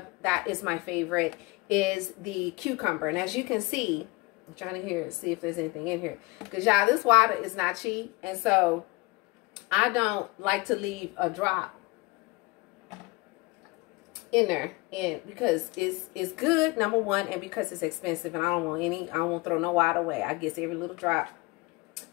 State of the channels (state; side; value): quieter; right; 23.5 dB